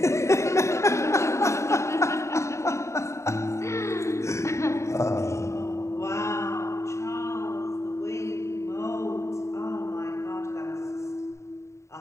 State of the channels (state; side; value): late; right; 0.14 ms